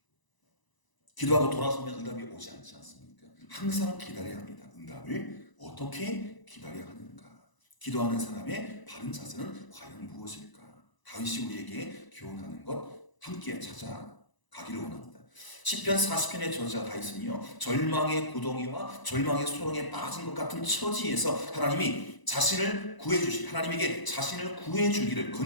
기도하고 돌아서면 응답이 오지 않지 않습니까? 항상 기다려야 합니다. 응답을 어떻게 기다려야 하는가? 기도하는 사람의 바른 자세는 과연 무엇일까? 다윗이 우리에게 교훈하는 것 함께 찾아가기를 원합니다. 시편 40편의 저자 다윗은요 절망의 구덩이와 절망의 소렁에 빠진 것 같은 처지에서 하나님이 하나님에게 자신을 구해주기를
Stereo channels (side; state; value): right; late; 1.0 ms